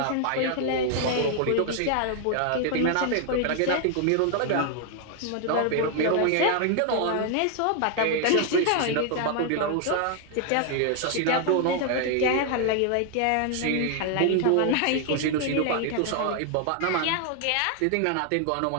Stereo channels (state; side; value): different; both; correlation 0.00